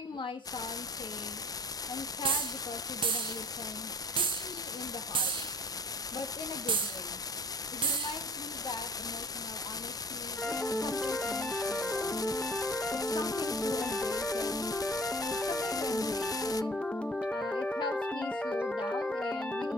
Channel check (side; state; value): both; normal; correlation 0.50